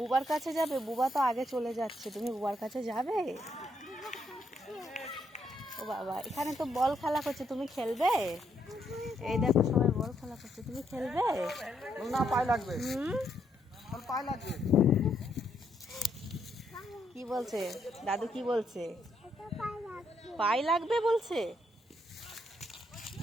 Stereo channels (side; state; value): both; normal; correlation 0.75